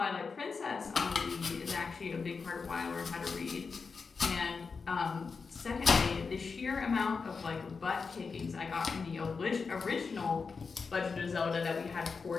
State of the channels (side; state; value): right; quieter; 5.0 dB